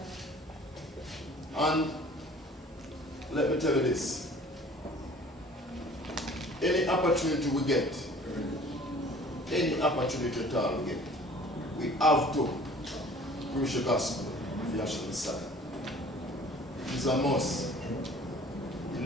And let me tell you this. Any opportunity we get, any opportunity at all we get, we have to preach the gospel of Yahshua Messiah. It is a must. It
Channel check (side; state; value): both; normal; correlation 0.50